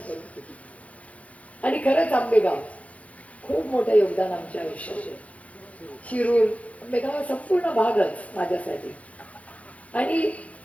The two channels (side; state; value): right; late; 0.066 ms